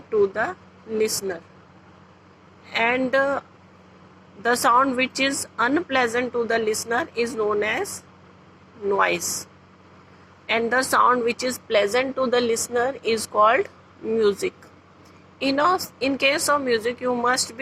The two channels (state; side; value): identical; both; correlation 1.00